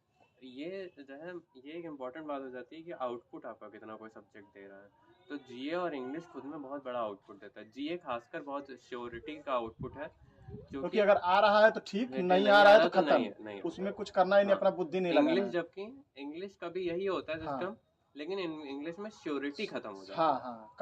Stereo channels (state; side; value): identical; both; correlation 1.00